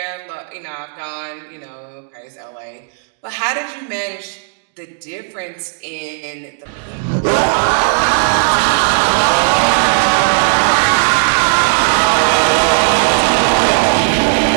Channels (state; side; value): silent; left; digital silence